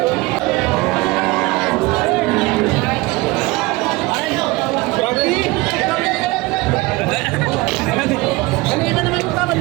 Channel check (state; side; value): quieter; left; 22.1 dB